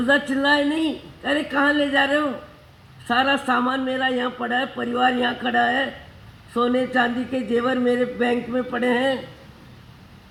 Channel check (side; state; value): both; identical; correlation 1.00